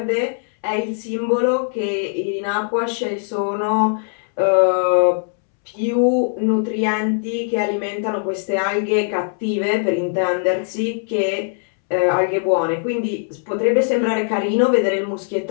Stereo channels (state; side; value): silent; right; 66 dB below the other